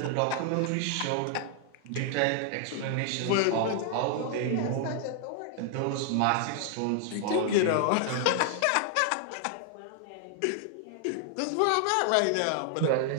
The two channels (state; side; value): different; both; correlation 0.00